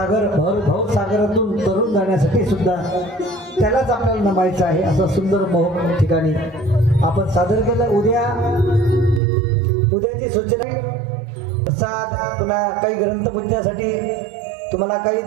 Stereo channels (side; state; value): left; drops out; at 9.2 s